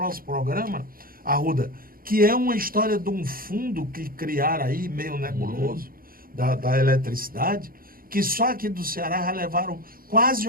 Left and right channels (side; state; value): left; late; 0.42 ms